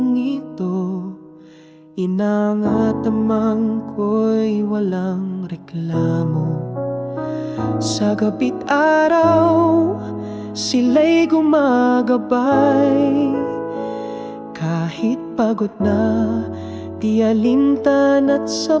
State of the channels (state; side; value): identical; both; correlation 1.00